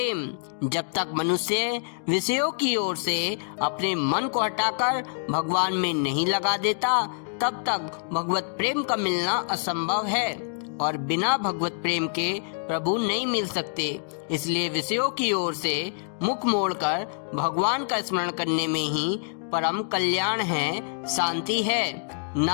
जब तक मनुष्य विषयों की ओर से अपने मन को हटाकर भगवान में नहीं लगा देता, तब तक भगवत प्रेम का मिलना असंभव है और बिना भगवत प्रेम के प्रभु नहीं मिल सकते। इसलिए विषयों की ओर से मुख मोड़कर भगवान का स्मरण करने में ही परम कल्याण है, शांति है।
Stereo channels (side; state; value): right; silent; digital silence